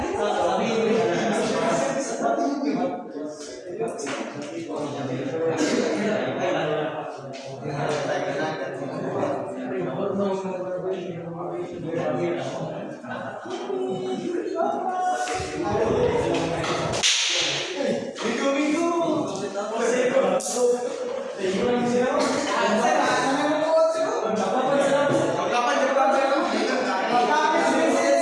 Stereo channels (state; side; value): identical; both; correlation 1.00